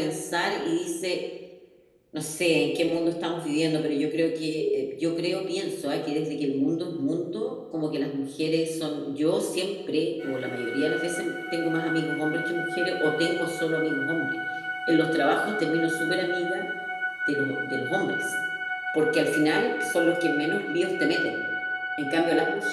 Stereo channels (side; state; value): both; identical; correlation 1.00